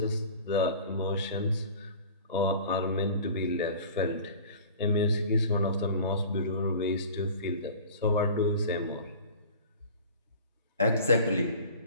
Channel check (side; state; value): both; inverted; correlation -0.42